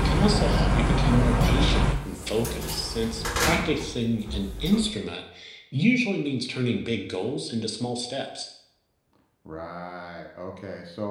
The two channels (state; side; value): identical; both; correlation 1.00